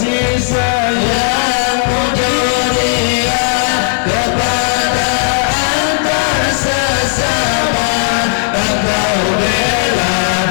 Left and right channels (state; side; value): silent; right; 57 dB below the other